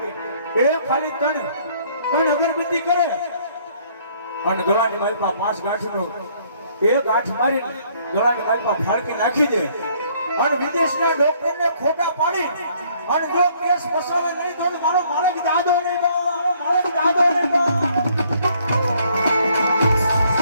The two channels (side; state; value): both; inverted; correlation -0.63